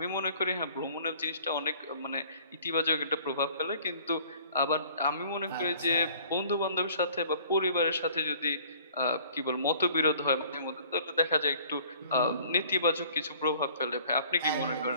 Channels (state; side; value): inverted; both; correlation -0.52